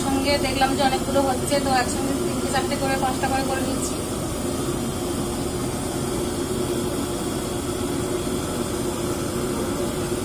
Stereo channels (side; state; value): both; identical; correlation 1.00